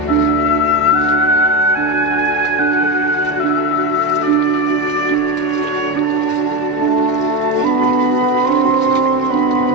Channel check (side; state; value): both; normal; correlation 0.16